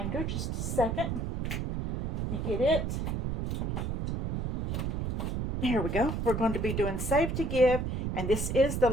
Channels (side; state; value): right; noise; rumble, 1 dB below the sound